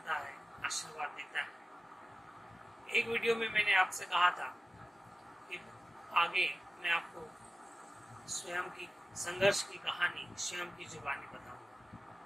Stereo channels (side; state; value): both; normal; correlation 0.95